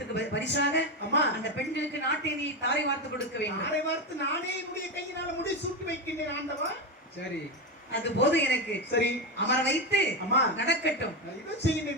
பரிசாக அந்த பெண்களுக்கு நாட்டை நீ தாரை வார்த்து கொடுக்க வேண்டும். தாரை வார்த்து நானே என்னுடைய கையினால முடி சூட்டி வைக்கின்றேன் ஆண்டவா. சரி, அது போது எனக்கு. சரி, அமர வைத்து நடக்கட்டும் இதை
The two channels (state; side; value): normal; both; correlation 0.14